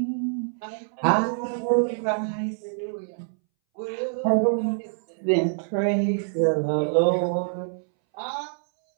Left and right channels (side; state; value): left; silent; 61 dB below the other